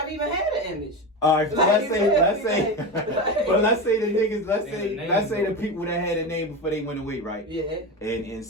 even had an image. All right, so let's say the niggas, let's say the people that had a name before they went away, right? Yeah. And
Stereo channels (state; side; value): normal; both; correlation 0.21